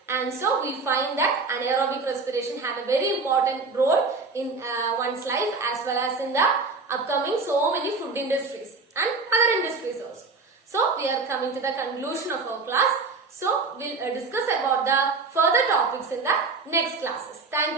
And so we find that anaerobic respiration have a very important role in one's life as well as in the upcoming so many food industries and other industries also. So we are coming to the conclusion of our class. So we'll discuss about the further topics in the next classes. Thank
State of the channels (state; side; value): quieter; left; 4.1 dB